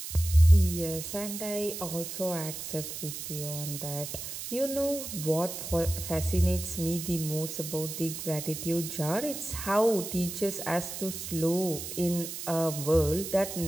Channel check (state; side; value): noise; right; hiss, 7 dB below the sound